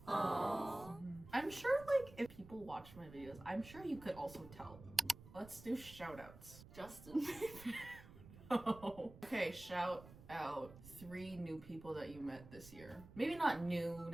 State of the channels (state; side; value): noise; right; rumble, 17 dB below the sound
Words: I'm sure like if people watch my videos, I'm sure you could also tell. Let's do shoutouts. Justin. Oh. Okay, shout out 3 new people that you met this year. Maybe not new